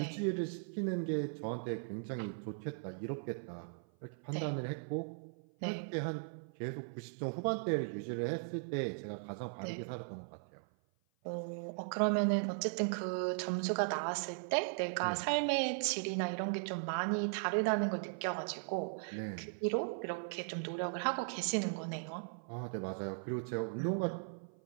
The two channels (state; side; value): silent; left; 52 dB below the other